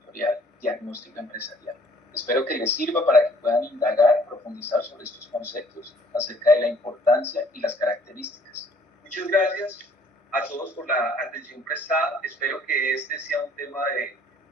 Diagnóstico Empresarial. Espero que les sirva para que puedan indagar, profundizar sobre estos conceptos acerca de la importancia y las características. Muchas gracias a todos por la atención prestada. Espero que este sea un tema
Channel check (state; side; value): normal; both; correlation 0.59